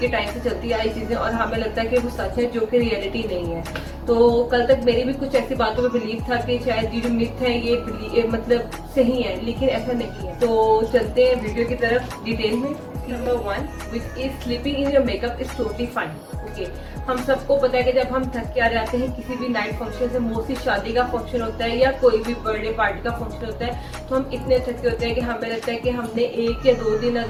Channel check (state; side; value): identical; both; correlation 1.00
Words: टाइम से चलती आई चीजें और हमें लगता है कि वो सच है, जो कि रियलिटी नहीं है। तो कल तक मेरी भी कुछ ऐसी बातों में बिलीव था कि शायद ये जो मिथ है ये मतलब सही है, लेकिन ऐसा नहीं है। तो चलते हैं वीडियो की तरफ डिटेल में। Number 1, which is sleeping in your makeup is totally fine. Okay, हम सबको पता है कि जब हम थक के आ जाते हैं किसी भी नाइट फंक्शन से, मोस्टली शादी का फंक्शन होता है या कोई भी बर्थडे पार्टी का फंक्शन होता है, तो हम इतने थके होते हैं कि हमें लगता है कि हमने 1 या 2 दिन